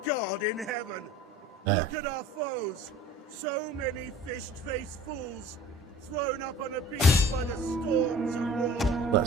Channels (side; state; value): both; normal; correlation 0.45